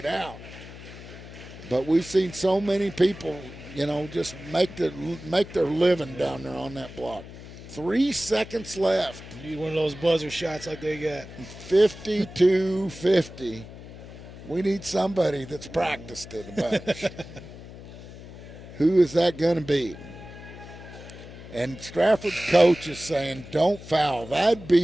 out. But we've seen so many people, just make their living down there on that block. 3 seconds left. Need one of those buzzer shots like they got. 52-50. We need somebody that's practiced it a bunch. Who is that going to be? And Strafford's coach is saying, don't foul. That'd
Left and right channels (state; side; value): noise; left; hum, 15 dB below the sound